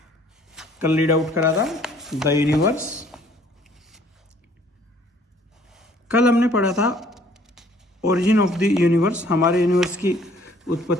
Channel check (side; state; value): both; normal; correlation 0.58